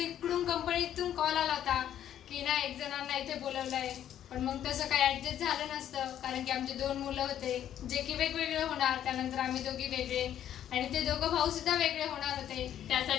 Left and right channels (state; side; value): quieter; right; 10.7 dB